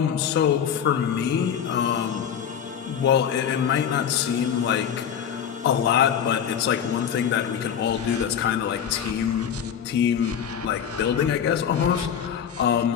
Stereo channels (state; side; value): quieter; right; 8.4 dB